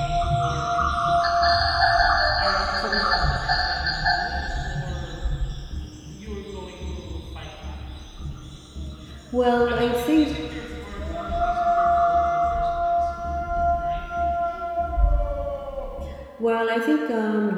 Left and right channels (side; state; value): both; identical; correlation 1.00